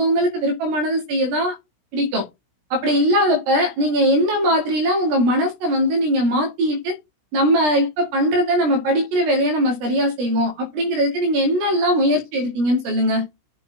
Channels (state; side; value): late; left; 17 ms